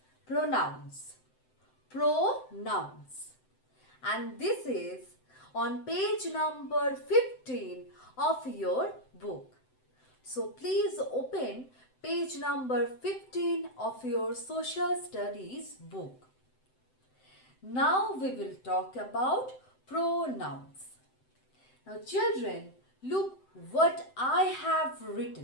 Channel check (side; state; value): right; late; 7.8 ms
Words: Pronouns. Pronouns. And this is on page number 15 of your book. So please open page number 15 of your social studies book. Now we will talk about pronouns. Now children, look what I have